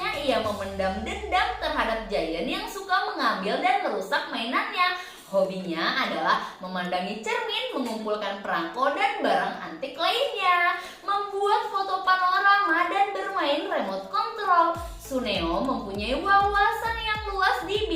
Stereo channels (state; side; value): identical; both; correlation 1.00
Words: ia memendam dendam terhadap Giant yang suka mengambil dan merusak mainannya. Hobinya adalah memandangi cermin, mengumpulkan perangko dan barang antik lainnya, membuat foto panorama dan bermain remote control. Tsuneo mempunyai wawasan yang luas di